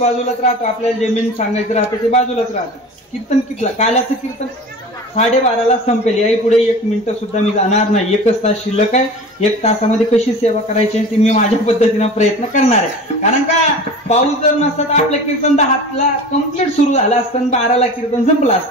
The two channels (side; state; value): both; normal; correlation 0.37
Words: राहतो, आपल्याला जे मेन सांगायचं राहतं ते बाजूलाच राहतं. कीर्तन कितला, काल्याचं कीर्तन 12:30ला संपेल. याही पुढे 1 मिनिटं सुद्धा मी जाणार नाही. 1 तास शिल्लक आहे. 1 तासामध्ये कशी सेवा करायची ते मी माझ्या पद्धतीनं प्रयत्न करणार आहे. कारण का पाऊस जर नसता तर आपलं कीर्तन 10ला कम्प्लीट सुरू झालं असतं, 12ला कीर्तन संपलं